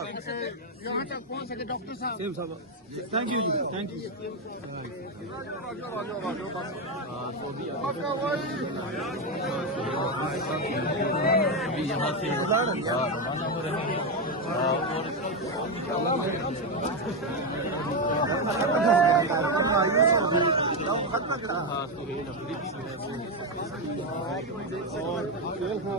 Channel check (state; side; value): normal; both; correlation 0.07